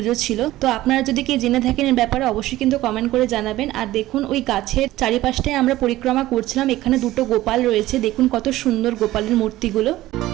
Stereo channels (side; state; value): left; quieter; 16.1 dB